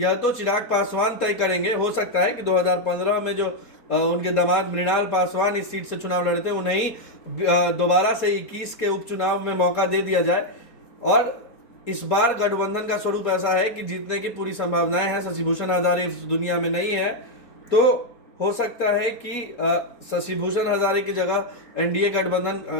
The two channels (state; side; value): late; right; 4.2 ms